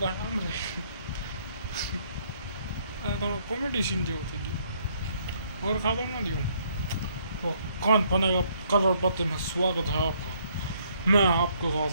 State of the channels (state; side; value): inverted; both; correlation -0.67